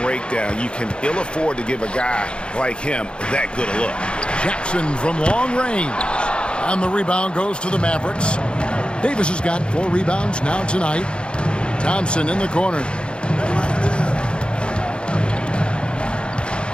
breakdown. You can ill afford to give a guy like him that good a look. Jackson from long range. And the rebound goes to the Mavericks. Davis has got 4 rebounds now tonight. Thompson in the corner.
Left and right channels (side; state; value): right; late; 0.055 ms